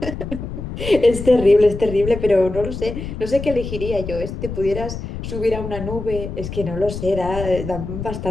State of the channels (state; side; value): noise; left; rumble, 7 dB below the sound